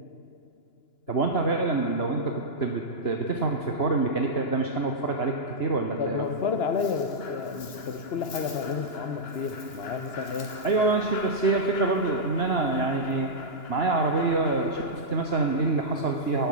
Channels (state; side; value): late; right; 2.9 ms